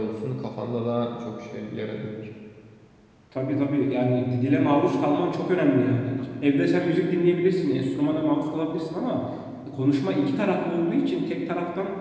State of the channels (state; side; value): identical; both; correlation 1.00